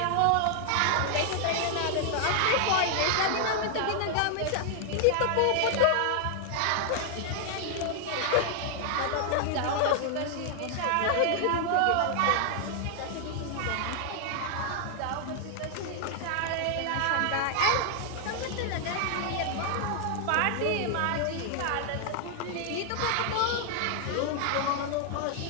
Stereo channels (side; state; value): both; different; correlation 0.00